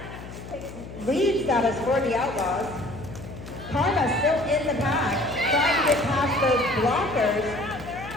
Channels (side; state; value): left; noise; hum, 13 dB below the sound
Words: lead status for the Outlaws. Karma still in the pack, trying to get past those blockers.